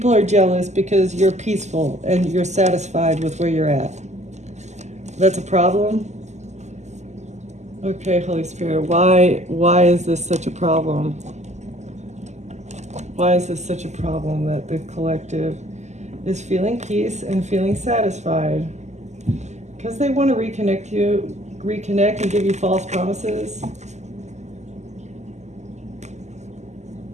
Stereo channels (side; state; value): left; late; 0.33 ms